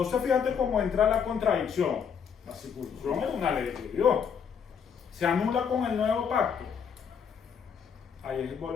fíjate cómo entra la contradicción. La circuncisión es una ley de Dios. Se anula con el nuevo pacto. Ahí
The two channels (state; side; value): quieter; right; 7.0 dB